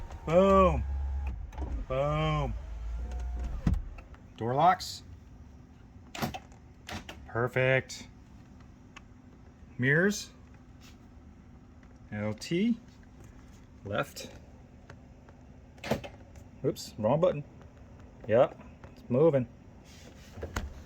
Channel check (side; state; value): both; identical; correlation 1.00